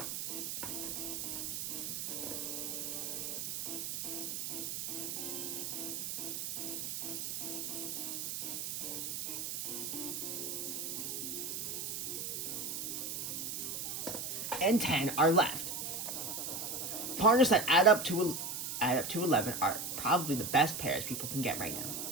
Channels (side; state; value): right; noise; hiss, 4 dB below the sound